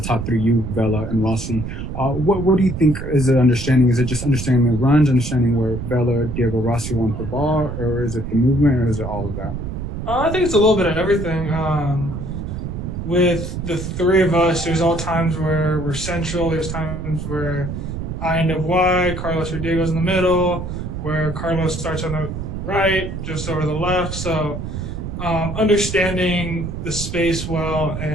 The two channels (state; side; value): noise; right; rumble, 6 dB below the sound